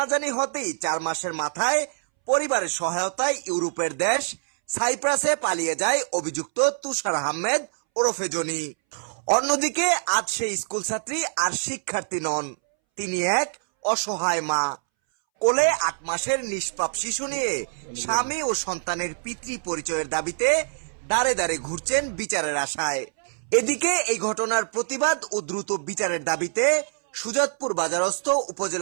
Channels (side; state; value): left; silent; 62 dB below the other